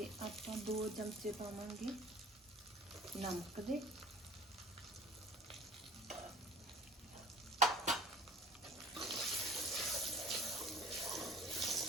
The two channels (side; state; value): both; normal; correlation 0.48